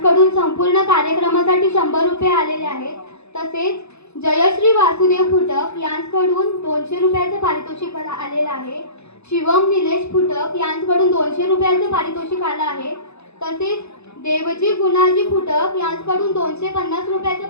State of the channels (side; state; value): right; late; 0.80 ms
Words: संपूर्ण कार्यक्रमासाठी 100 रुपये आलेले आहेत. तसेच जयश्री वासुदेव फुटक यांच्याकडून 200 रुपयाचे पारितोषिक आलेले आहे. शिवम निलेश फुटक यांच्याकडून 200 रुपयाचे पारितोषिक आलं आहे. तसेच देवजी गुणाजी फुटक यांच्याकडून 250 रुपयाचे